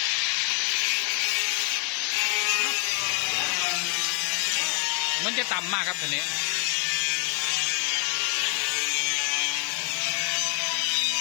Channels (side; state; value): right; quieter; 33.7 dB